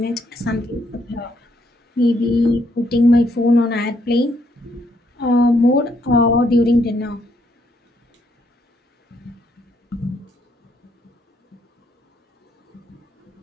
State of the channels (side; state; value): both; normal; correlation 0.73